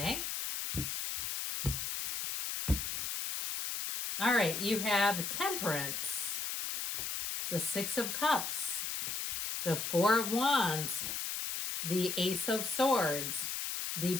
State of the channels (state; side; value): noise; left; hiss, 3 dB below the sound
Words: All right, you have Temperance, the Six of Cups, the Four of Wands, the Ace of Swords, the